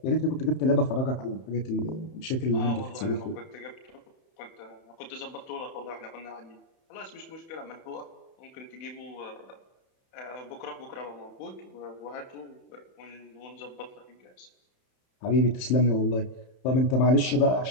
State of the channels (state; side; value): late; right; 31 ms